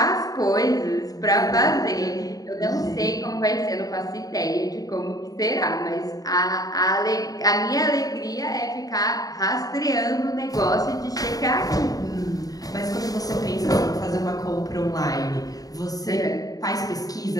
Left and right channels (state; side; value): late; right; 0.18 ms